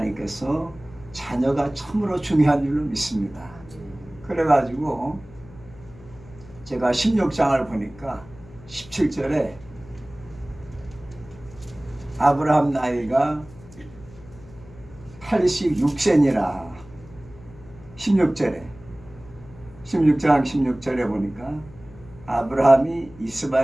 자녀가 참으로 중요한 줄로 믿습니다. 그래가지고 제가 16장을 보니까 17절에 아브라함 나이가 86세니라 16장 16절에 보니까 아브라함이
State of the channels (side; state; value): left; noise; hum, 20 dB below the sound